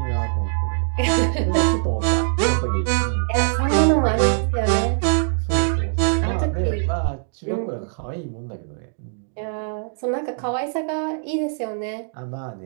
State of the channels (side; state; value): left; silent; digital silence